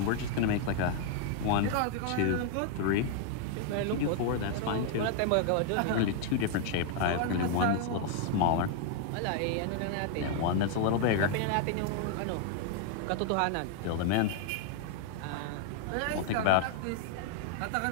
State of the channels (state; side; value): different; both; correlation 0.00